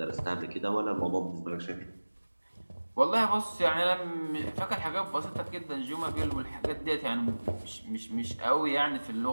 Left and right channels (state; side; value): inverted; both; correlation -1.00